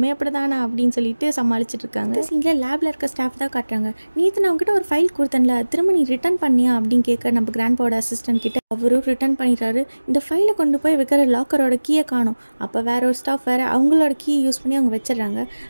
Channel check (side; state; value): both; inverted; correlation -1.00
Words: அப்படி தானா அப்படின்னு சொல்லிட்டு சமாளிச்சுட்டு இருக்காங்க. சீனில் லேபில் இருக்க ஸ்டாஃப் தான் காட்டுறாங்க, நேற்று நான் அவங்ககிட்ட ஒரு ஃபைல் கொடுத்தேன்ல திரும்ப நீ ரிட்டர்ன் பண்ணியா அப்படின்னு கேட்க, நம்ம கிராண்ட்பாவோட அசிஸ்டன்ட் கிட்ட அவரும் ரிட்டர்ன் பண்ணிடுறாரு. இந்த ஃபைலை கொண்டு போய் வைக்கிற லாக்கரோட கீயை காணும். அப்போ வேற ஒரு ஸ்டாஃப் வேறு அவங்களோட கீயை யூஸ் பண்ணி அவங்க வச்சிடறாங்க.